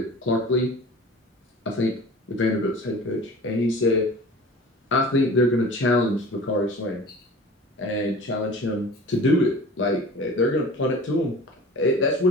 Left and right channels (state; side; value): normal; both; correlation 0.41